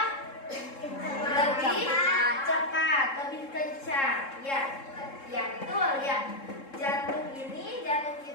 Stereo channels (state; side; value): late; right; 3.7 ms